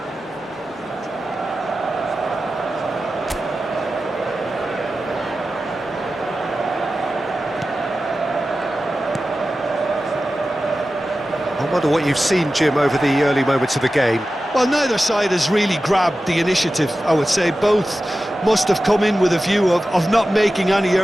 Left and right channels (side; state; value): both; normal; correlation 0.94